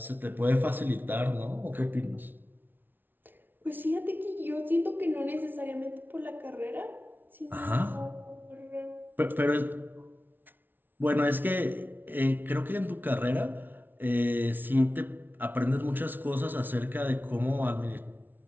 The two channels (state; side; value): late; left; 0.093 ms